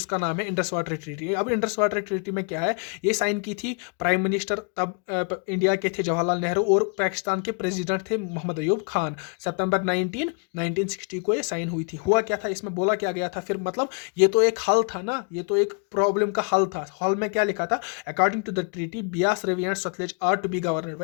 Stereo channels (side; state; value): right; quieter; 36.5 dB